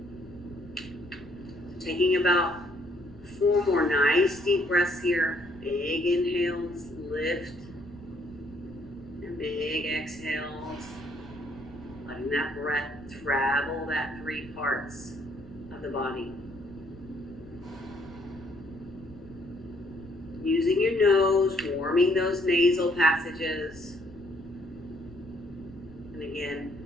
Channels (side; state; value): left; noise; rumble, 22 dB below the sound